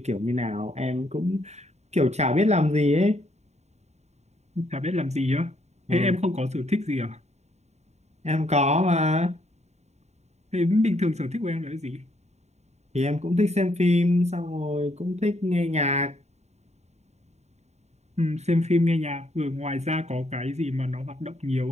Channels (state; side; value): late; left; 0.32 ms